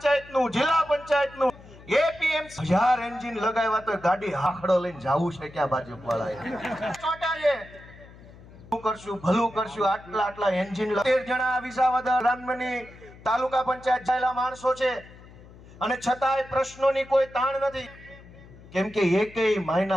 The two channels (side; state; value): left; noise; hum, 20 dB below the sound